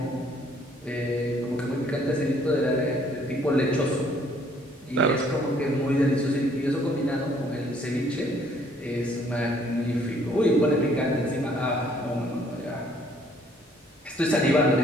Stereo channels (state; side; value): normal; both; correlation 0.62